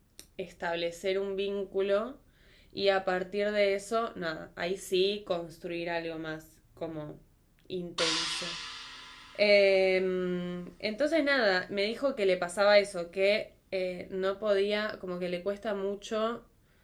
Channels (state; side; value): identical; both; correlation 1.00